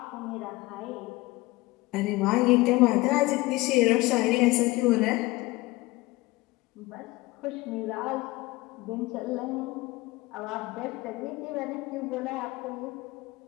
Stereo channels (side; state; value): right; quieter; 20.9 dB